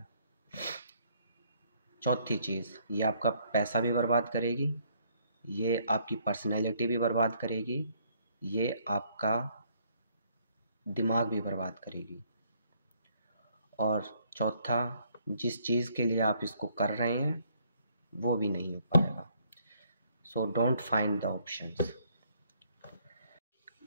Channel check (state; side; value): inverted; both; correlation -0.66